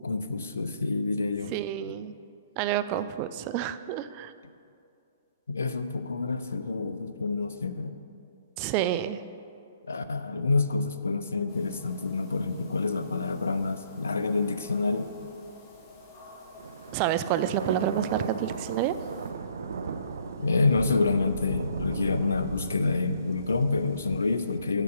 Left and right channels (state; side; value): inverted; both; correlation -0.64